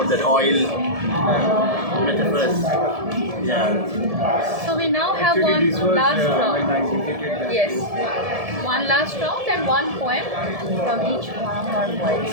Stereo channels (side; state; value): left; late; 1.7 ms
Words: that oil metaphors. Yeah. So we now have Actually, one this was last when round. I visited that. Yes. One last round and one poem from each one of our poets.